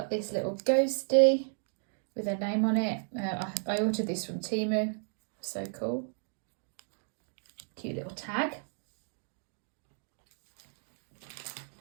this little ghosty with her name on it. I ordered this from Temu. So cool. Cute little tag.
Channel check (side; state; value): left; silent; 56 dB below the other